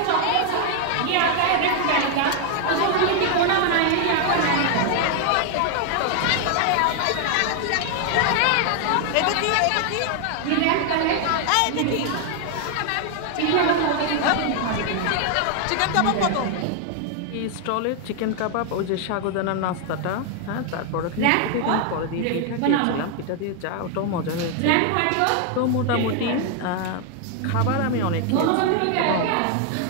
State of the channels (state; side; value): different; both; correlation 0.00